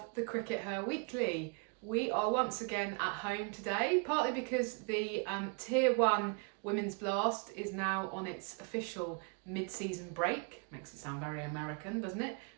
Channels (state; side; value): quieter; left; 35.9 dB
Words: the CRICKETher Weekly. We are once again at home today, partly because the Tier 1 Women's Blast is now on its official mid-season break. Makes it sound very American, doesn't it?